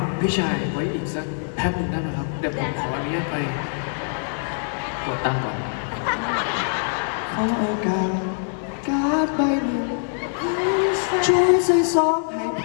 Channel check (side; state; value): right; silent; digital silence